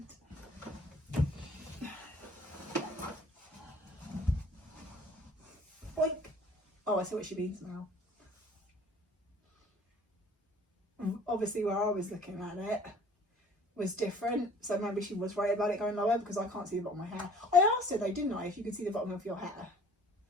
Boink. Oh, I see what she means now. Obviously where I was looking at it was different, so maybe she was worried about it going lower because I can't see the bottom of my hair. I asked her though, didn't I, if you could see the bottom of your hair.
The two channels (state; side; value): normal; both; correlation 0.51